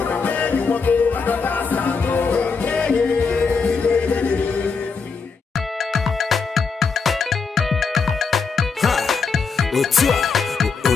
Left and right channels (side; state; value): right; quieter; 5.1 dB